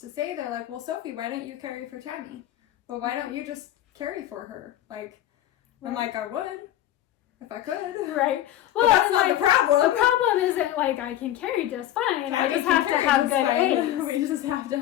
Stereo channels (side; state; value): right; quieter; 13.0 dB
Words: say, they're like, well, Sophie, why don't you carry for Tami? Well, why don't you just carry for her? Like, I'm like, I would if I could. Right. Well, that's not the problem. The problem isn't like I can carry just fine. I just have to have good eggs. We just have to